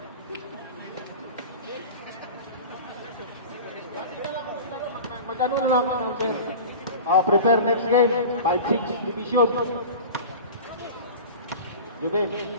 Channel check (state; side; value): inverted; both; correlation -0.34